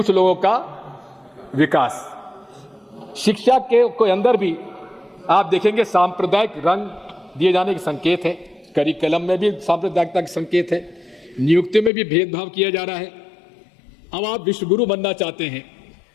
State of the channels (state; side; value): drops out; right; at 11.9 s